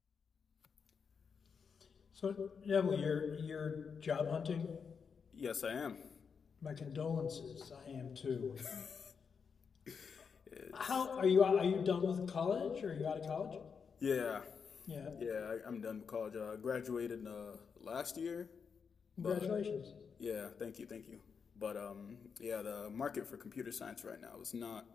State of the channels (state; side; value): quieter; right; 6.1 dB